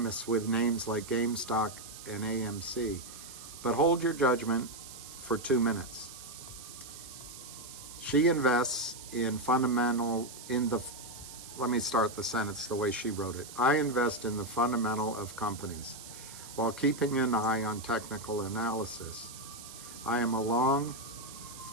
with names like GameStop and AMC. But hold your judgment for 2 minutes. She invests let me start the sentence the way she wrote it. I invest in the fundamental of companies while keeping an eye on technical analysis. I am a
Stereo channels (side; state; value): right; noise; hiss, 14 dB below the sound